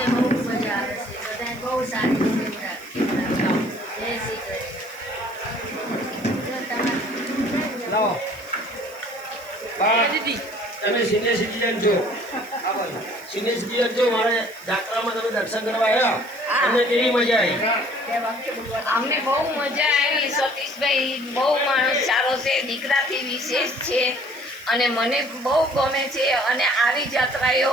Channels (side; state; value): right; noise; hiss, 23 dB below the sound